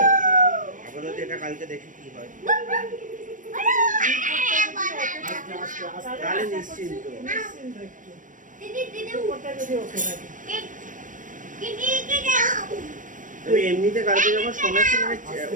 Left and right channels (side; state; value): left; late; 0.38 ms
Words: আপাতত এটা কালকে দেখি কি হয়। তাহলে নিশ্চিন্ত। তবে এমনিতে কালকে যখন শোনাচ্ছি